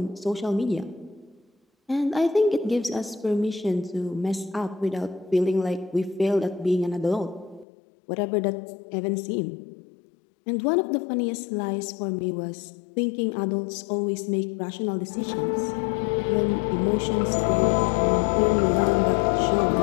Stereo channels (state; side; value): drops out; right; at 7.7 s